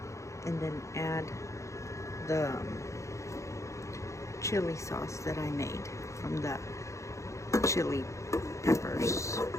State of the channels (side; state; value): right; late; 0.15 ms